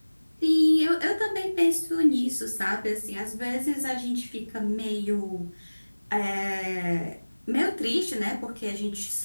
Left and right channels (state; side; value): inverted; both; correlation -1.00